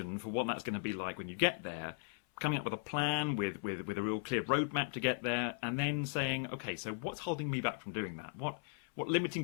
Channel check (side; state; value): right; silent; 53 dB below the other